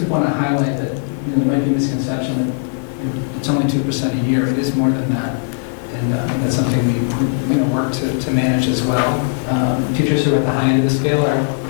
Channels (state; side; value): silent; right; digital silence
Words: want to highlight that there might be a misconception that it's only 2% a year. It is more than that. And that's something we work to manage as well. Teachers who are at the high end of the scale are